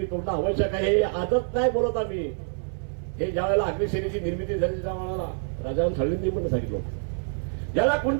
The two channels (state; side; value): silent; left; digital silence